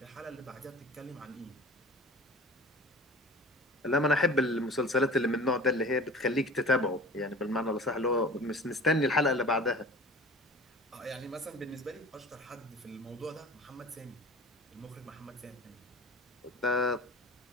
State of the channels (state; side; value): normal; both; correlation 0.40